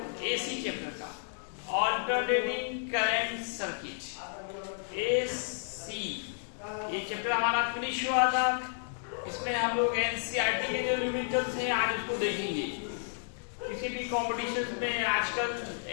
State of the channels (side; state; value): right; silent; digital silence